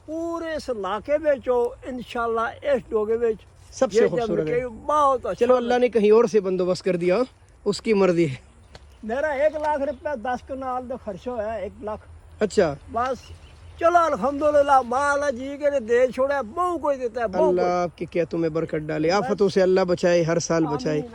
پورے اس علاقے میں انشاءاللہ اس ڈوگے میں سب سے خوبصورت ہے. بہت اچھا. چلو اللہ نے کہیں اور سے بندوبست کر دیا, اس کی مرضی ہے. میرا 1,00,000 روپے 10 کنال کا خرچہ ہوا ہے. 1,00,000. اچھا بس چلو الحمدللہ مالا جی کے دے چھوڑا بہو کوئی دیتا ہے. اللہ آپ کے کیتوں میں برکت ڈالے, آفتوں سے اللہ بچائے, ہر سال بچائے.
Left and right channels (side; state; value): both; identical; correlation 1.00